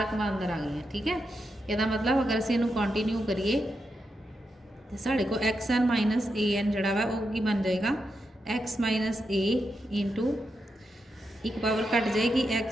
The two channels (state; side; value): normal; both; correlation 0.85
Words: रकम अंदर आ गई हैं। ठीक है, यदा मतलब अगर असीं इहनूं कंटिन्यू करिए तो साढ़े को x n minus a n जोड़ा वा वो की बन जाएगा एक्स माइनस ए इंटू एक पावर घट जाएगी